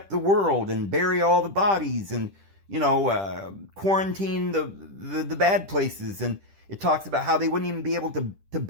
the world and bury all the bodies and, quarantine the bad places. And it talks about how they wouldn't even be able to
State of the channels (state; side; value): late; left; 10 ms